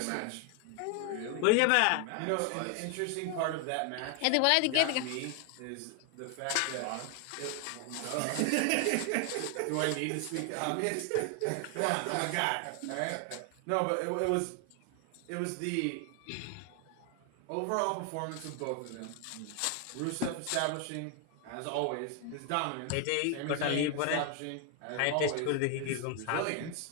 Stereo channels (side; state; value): both; different; correlation 0.00